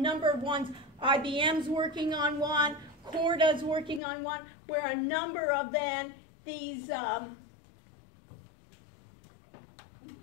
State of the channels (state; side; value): drops out; right; at 4.0 s